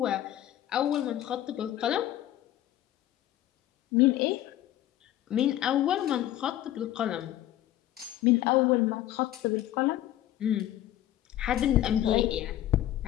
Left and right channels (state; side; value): quieter; right; 13.2 dB